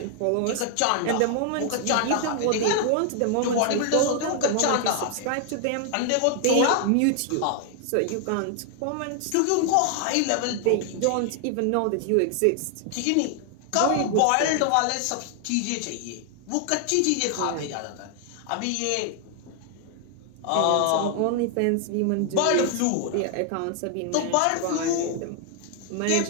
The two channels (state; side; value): different; both; correlation 0.00